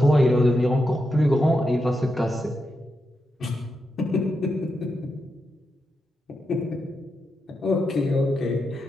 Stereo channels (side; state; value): both; normal; correlation 0.86